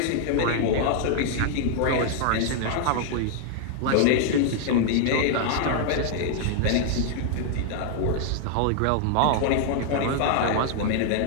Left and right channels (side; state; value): both; different; correlation 0.00